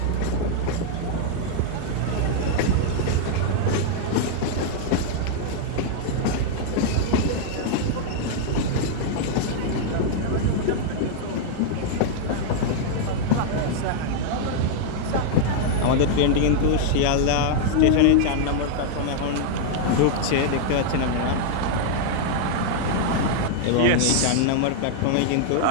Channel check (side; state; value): both; different; correlation -0.01